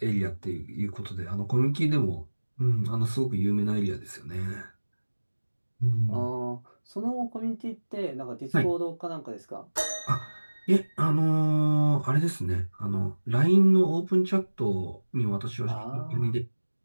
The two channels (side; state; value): both; inverted; correlation -1.00